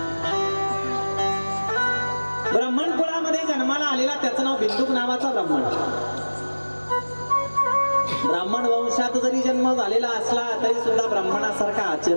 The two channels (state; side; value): inverted; both; correlation -1.00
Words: ब्राह्मण कुळामध्ये जन्माला आलेला त्याचं नाव बिंदुक नावाचा ब्राह्मण. ब्राह्मण वंशात जरी जन्म झालेला असला तरी सुद्धा ब्राह्मणासारखा